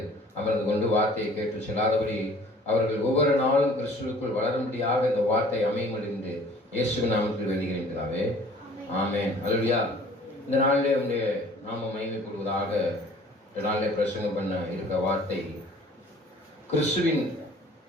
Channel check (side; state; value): both; normal; correlation 0.52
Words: அமர்ந்து கொண்டு வார்த்தையை கேட்டு செல்லாதபடி அவர்கள் ஒவ்வொரு நாளும் கிறிஸ்துவுக்குள் வளரும்படியாக இந்த வார்த்தை அமையும் என்று இயேசுவின் நாமத்தில் வேண்டுகிறேன். ஆமென். அல்லேலூயா. இந்த நாளிலே உங்களுடைய நாம மகிமைப்படுவதாக. இந்த நாளிலே பிரசங்கம் பண்ண இருக்க வார்த்தை, கிறிஸ்துவின்